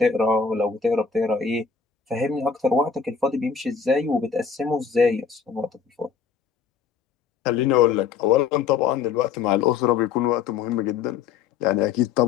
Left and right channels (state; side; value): quieter; right; 6.2 dB